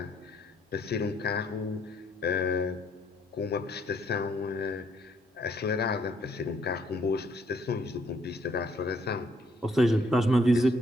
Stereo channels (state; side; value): normal; both; correlation 0.68